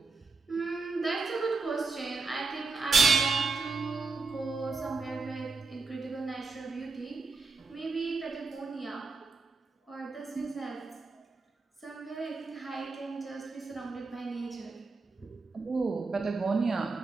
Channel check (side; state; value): left; quieter; 4.0 dB